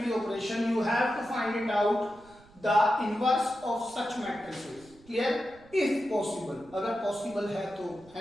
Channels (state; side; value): noise; right; rumble, 25 dB below the sound